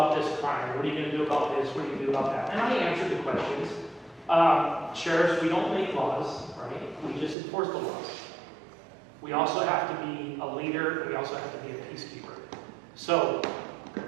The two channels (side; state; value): left; drops out; at 7.4 s